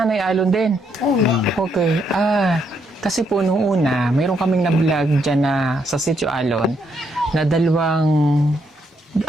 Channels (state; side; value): normal; both; correlation 0.75